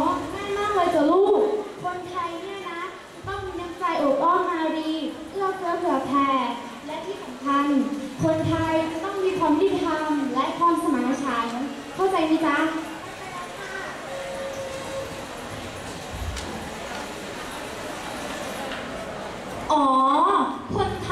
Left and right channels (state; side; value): identical; both; correlation 1.00